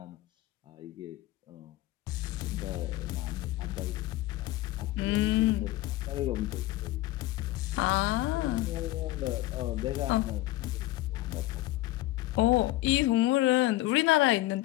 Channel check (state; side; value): quieter; right; 16.9 dB